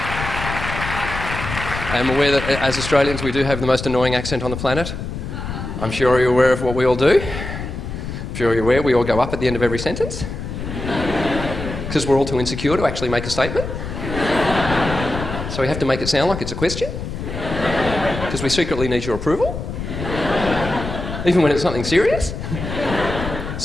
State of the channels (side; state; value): left; noise; rumble, 7 dB below the sound